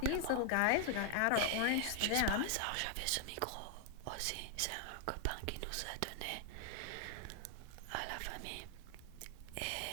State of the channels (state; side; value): different; both; correlation 0.00